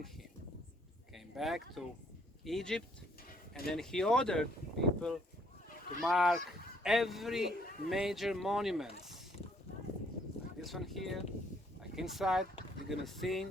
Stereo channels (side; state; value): both; normal; correlation 0.66